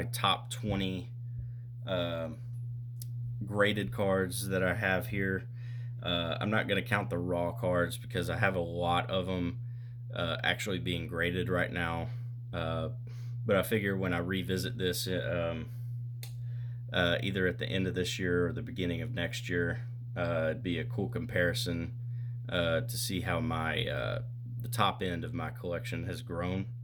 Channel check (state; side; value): identical; both; correlation 1.00